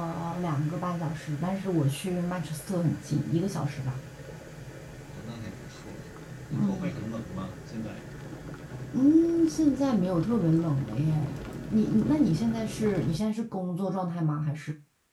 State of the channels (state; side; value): identical; both; correlation 1.00